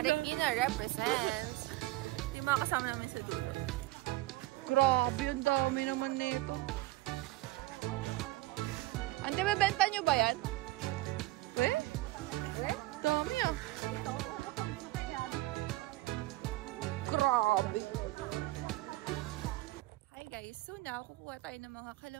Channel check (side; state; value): left; quieter; 18.4 dB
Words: represents. Yung mga kasama namin sa dulo. Grabe, ang dami naman nito. Ante, mabenta nyo ba yan? Eh? Dami ah. Grabe. Hi guys, so now kukuha tayo ng mga